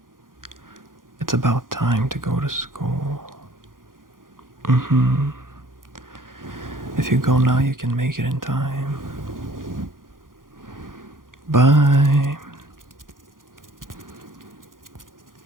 It's about time to go to school. If you go now, you can make it in time. Bye.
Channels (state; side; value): late; left; 0.90 ms